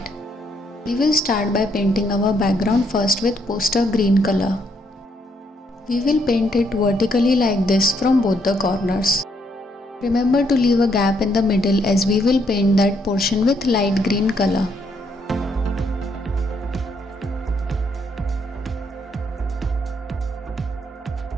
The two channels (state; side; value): normal; both; correlation 0.73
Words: We will start by painting our background first with poster green color. We will paint it vertically like this from both the corners. Remember to leave a gap in the middle as we will paint that portion with light green color.